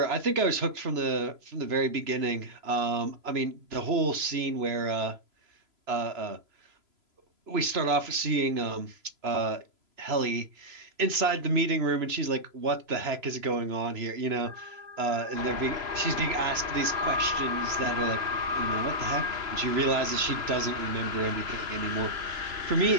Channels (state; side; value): late; left; 3.0 ms